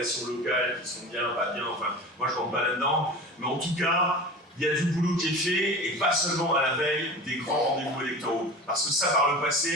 locales qui sont bien, pas bien, enfin, moi je rentre pas là-dedans. Mais en tout cas, il y a du boulot qui est fait, et pas seulement à la veille des grands rendez-vous électoraux. Parce que ça, par le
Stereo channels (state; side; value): normal; both; correlation 0.34